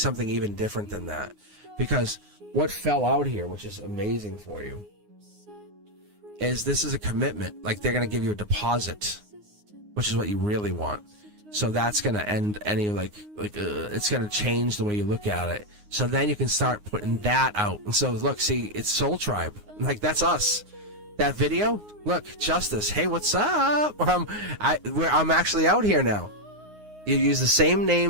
even different than that, because what fell out here, which is amazing for you, is this is a commitment. Like, they're gonna give you a deposit, which is what you really want. So that's gonna end any it's gonna change the way you look at it. So then you can start putting that out. And so look, see, it's Soul Tribe. Like, that's us. That video, look, Justice. Hey, what's up? I'm actually out here now. You use the same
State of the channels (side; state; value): left; late; 9.6 ms